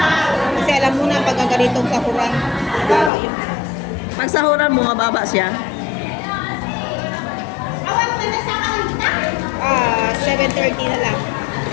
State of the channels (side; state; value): right; drops out; at 3.1 s